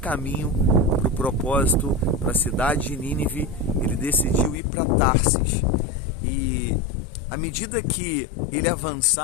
para o propósito, para a cidade de Nínive, ele decidiu ir para Tarsis. E à medida que ele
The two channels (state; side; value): drops out; right; at 4.5 s